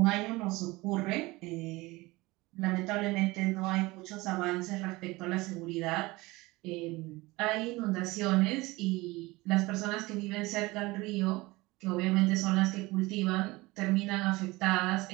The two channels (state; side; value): quieter; left; 21.6 dB